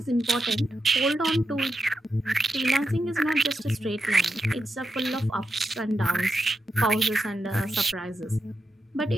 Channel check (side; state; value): both; normal; correlation 0.87